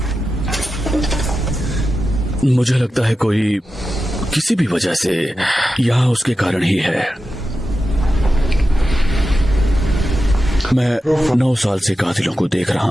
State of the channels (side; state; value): both; normal; correlation 0.91